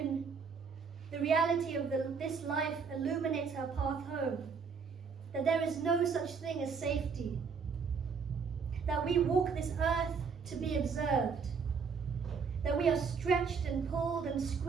the reality of this life illuminates her path home. That there is no such thing as safety. That we walk this earth to be observed. That we are stretched and pulled and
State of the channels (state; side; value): quieter; left; 5.6 dB